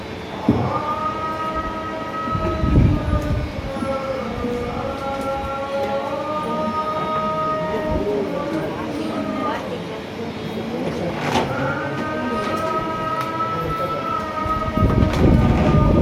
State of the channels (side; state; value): both; identical; correlation 1.00